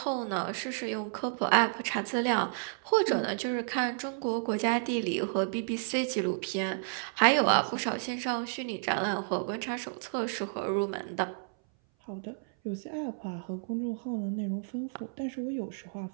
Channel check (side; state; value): left; silent; 57 dB below the other